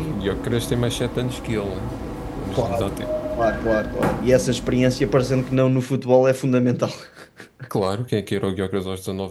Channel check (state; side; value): identical; both; correlation 1.00